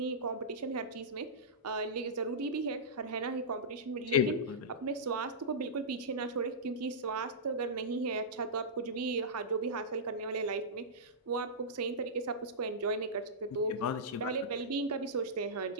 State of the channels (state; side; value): normal; both; correlation -0.16